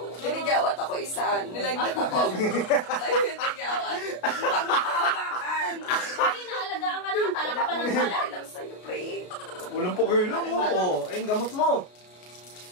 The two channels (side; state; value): right; late; 33 ms